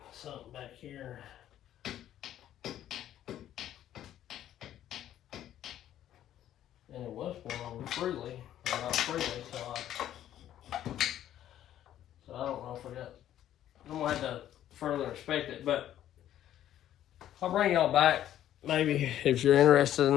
Something back here. And it was going over freely, or not freely, so I don't know if I'm gonna have to further inspect it, but I'll bring y'all back maybe if you're interested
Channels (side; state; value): right; quieter; 11.8 dB